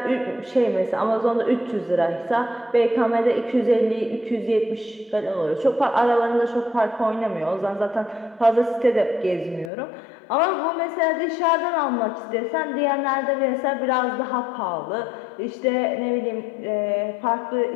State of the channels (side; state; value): right; drops out; at 9.7 s